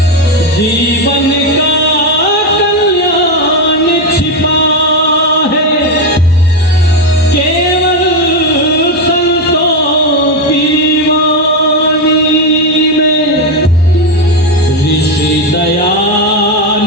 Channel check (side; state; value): both; normal; correlation 0.09